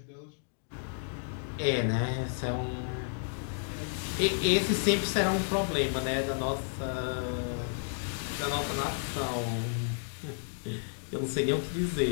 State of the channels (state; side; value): silent; right; digital silence